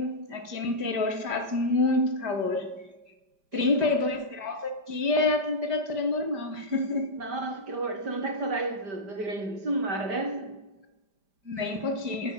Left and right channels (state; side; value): late; left; 5.0 ms